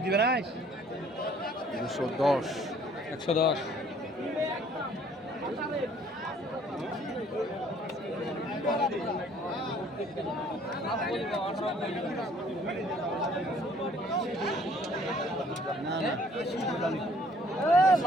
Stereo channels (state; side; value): normal; both; correlation 0.58